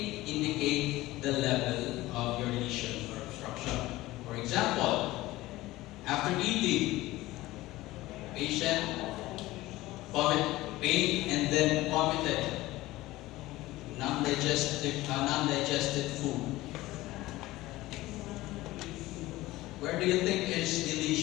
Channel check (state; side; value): quieter; right; 17.9 dB